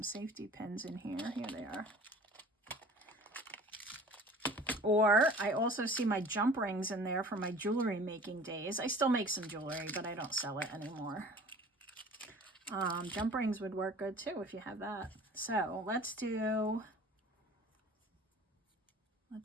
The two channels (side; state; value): both; normal; correlation 0.44